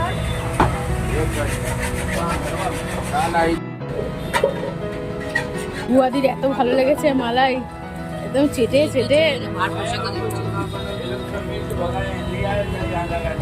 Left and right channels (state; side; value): identical; both; correlation 1.00